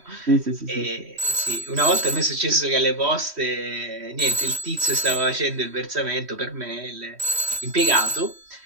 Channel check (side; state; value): left; late; 3.1 ms